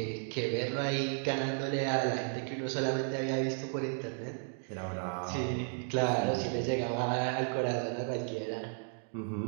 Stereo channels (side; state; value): left; silent; 55 dB below the other